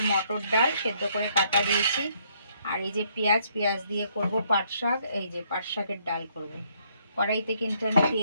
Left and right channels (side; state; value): both; inverted; correlation -0.69